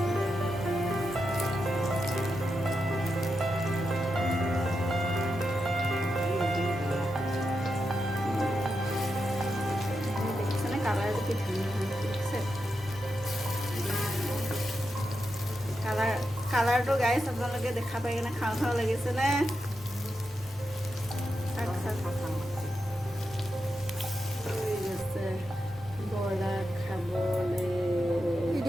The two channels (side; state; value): both; normal; correlation 0.87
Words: কালাৰটো গাইছ আপোনালোকে দেখা পাই কিনে খাওঁ খাওঁ লাগিছেনে?